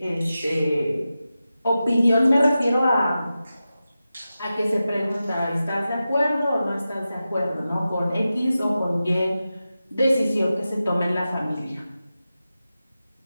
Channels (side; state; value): both; inverted; correlation -0.93